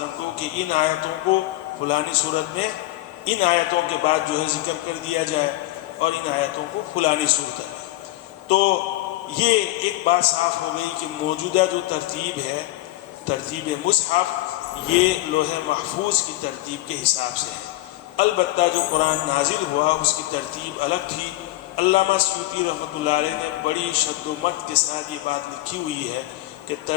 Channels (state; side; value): quieter; right; 17.4 dB